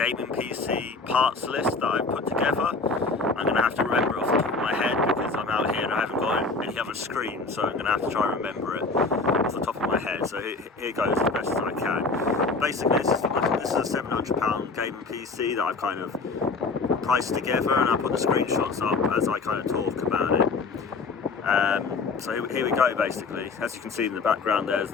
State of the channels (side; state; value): right; quieter; 4.0 dB